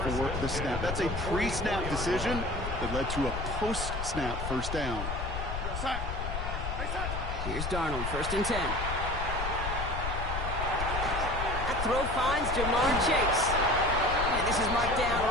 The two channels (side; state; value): left; noise; rumble, 4 dB below the sound